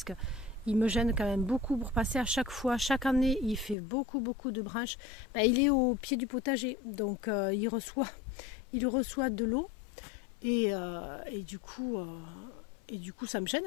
qu'il me gêne quand même beaucoup pour passer à chaque fois. Chaque année il fait beaucoup de branches. Il est au pied du potager, donc il reçoit de l'eau et du coup ça me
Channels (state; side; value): drops out; right; at 3.8 s